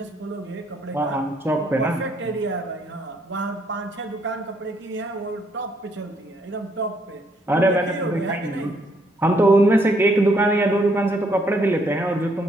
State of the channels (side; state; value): both; normal; correlation 0.70